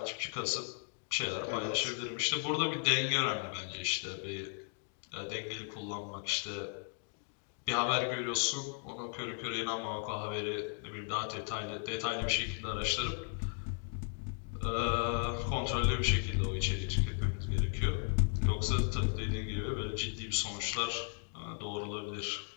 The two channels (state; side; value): silent; right; 54 dB below the other